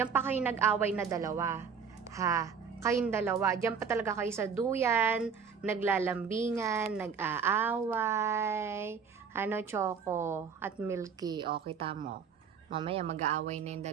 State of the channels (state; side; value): quieter; left; 6.3 dB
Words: pa kayo nag-away na dalawa. Ha? Kayong dalawa. Diyan pa talaga kayo sa duyan, naglalambingan, nag-aaway. Ano, Choco at Milky? O, kita mo. Mamaya mag-aaway na yung